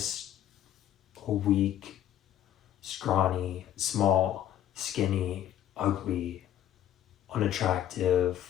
a weak, scrawny, small, skinny, ugly, unattractive,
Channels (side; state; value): right; quieter; 11.3 dB